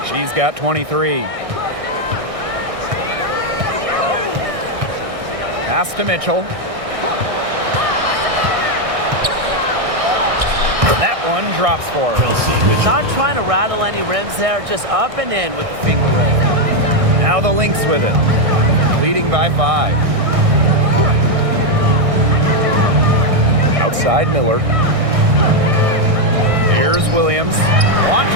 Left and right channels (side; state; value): left; late; 1.6 ms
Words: She's got 23. Pass to Mitchell. That one drops for her. Not trying to rattle any rims there, just up and in with the finger roll. Now the Lynx with it. Leading by 5. Outside Miller. Here's Williams.